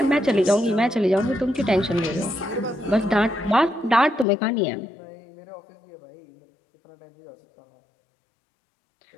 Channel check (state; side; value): drops out; right; at 4.2 s